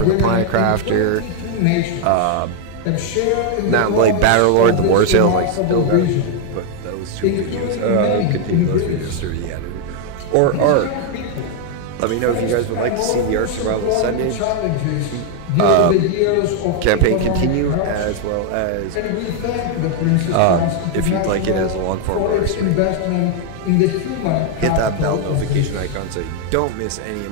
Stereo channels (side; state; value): both; different; correlation 0.00